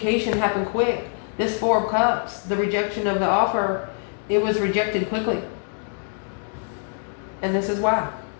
happened quick. This 4 of Cups, the rejection of the offer, it was rejected quickly. And this is why.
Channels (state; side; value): silent; right; 56 dB below the other